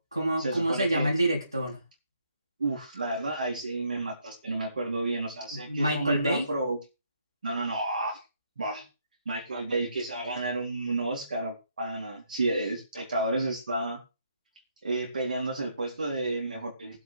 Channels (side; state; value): both; inverted; correlation -0.74